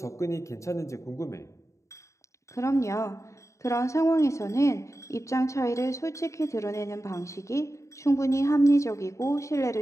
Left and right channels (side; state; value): right; late; 0.15 ms